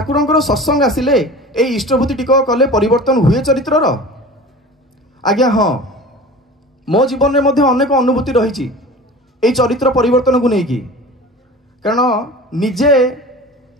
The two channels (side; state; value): both; normal; correlation 0.37